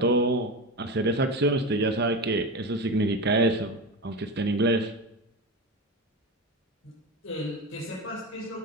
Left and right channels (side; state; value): both; normal; correlation 0.22